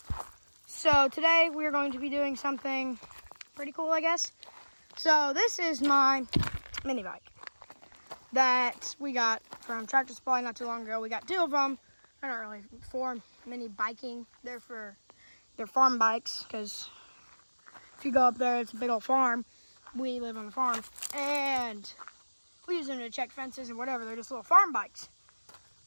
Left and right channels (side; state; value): both; inverted; correlation -1.00